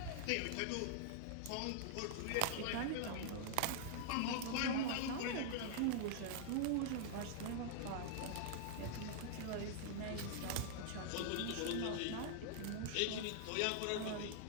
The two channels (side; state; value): both; different; correlation -0.01